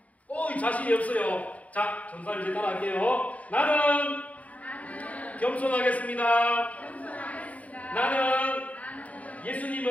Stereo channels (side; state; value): right; late; 0.069 ms